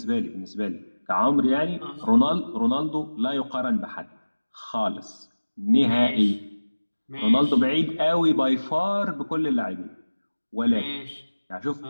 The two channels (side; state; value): both; inverted; correlation -1.00